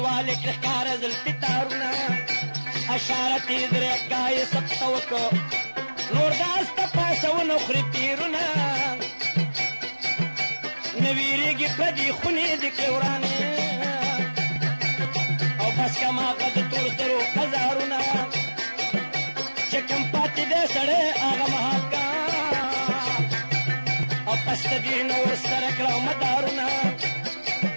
کې ښکاره زلفې تارونه اشارت یې درېږه یې سبته وکړه نور داس ته پاسونه خوري تیرونه نه ویرېږي پردي خونې د کې ورانې او بس کماغه د تور سرو هزارونه چې کوم پاتې دی سړی هغه مهاکا او پس د دې نه ورسره کړه مدارونه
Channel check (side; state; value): both; inverted; correlation -1.00